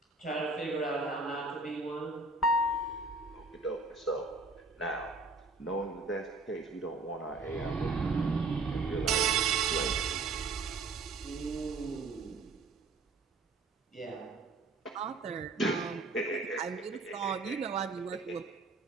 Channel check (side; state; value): left; quieter; 3.6 dB